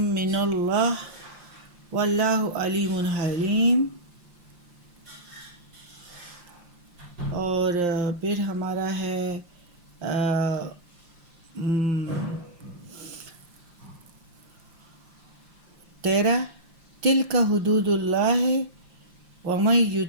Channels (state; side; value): late; left; 5.7 ms